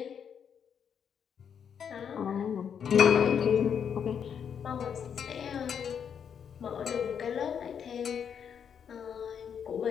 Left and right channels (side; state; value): right; quieter; 7.7 dB